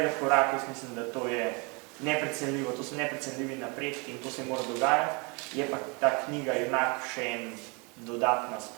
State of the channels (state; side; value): quieter; left; 31.3 dB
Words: korak, jaz mislim, da to je neprecenljivo, to so neprecenljivi napredki in to se mora dogajati. Je pa ta knjiga enak še en dodatna